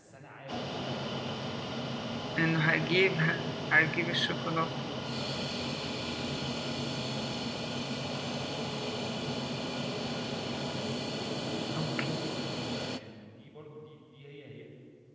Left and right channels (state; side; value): identical; both; correlation 1.00